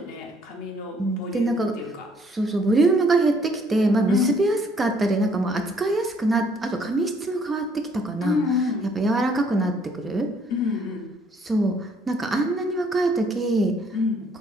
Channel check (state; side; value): normal; both; correlation 0.64